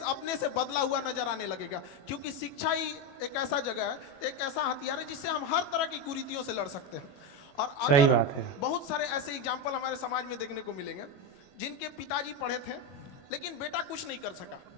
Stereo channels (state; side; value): late; right; 21 ms